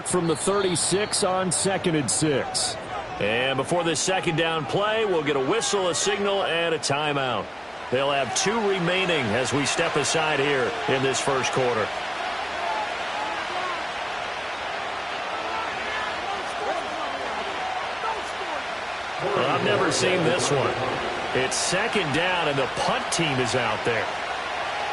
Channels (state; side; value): identical; both; correlation 1.00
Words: from the 36 on 2nd and 6. And before this second down play, we'll get a whistle, a signal, and a timeout. They'll have 2 remaining as we step aside here in this first quarter. Well, I've never seen this one. It's second down, and the punt team is out there.